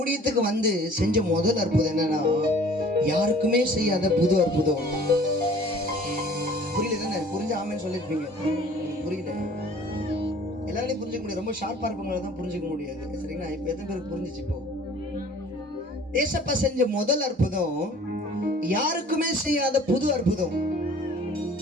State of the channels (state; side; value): normal; both; correlation 0.50